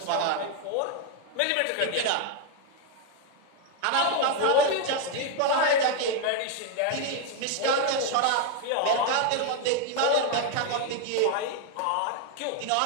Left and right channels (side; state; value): both; different; correlation 0.01